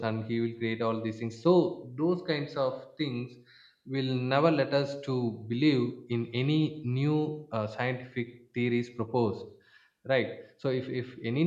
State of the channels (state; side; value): identical; both; correlation 1.00